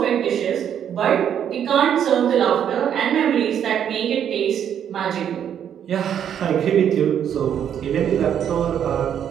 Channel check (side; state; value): left; quieter; 9.1 dB